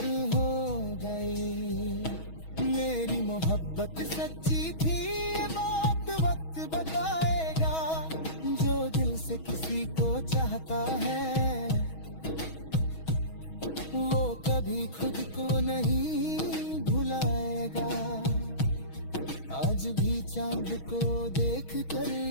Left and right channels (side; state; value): right; late; 6.3 ms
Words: हो गई। मेरी मोहब्बत सच्ची थी, ये बात वक्त बताएगा। जो दिल से किसी को चाहता है, वो कभी खुद को नहीं भुलाएगा। आज भी चांद को देख कर